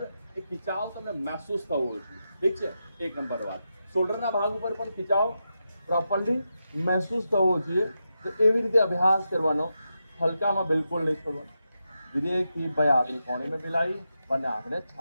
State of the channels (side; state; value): both; inverted; correlation -0.88